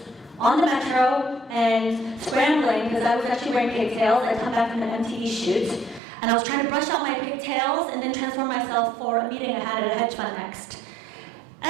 on the metro and scrambling because I was actually wearing pigtails. I'd come back from an MTV shoot, and I was trying to brush out my pigtails and then transform myself for a meeting I had at a hedge fund next.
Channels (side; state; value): left; drops out; at 6.0 s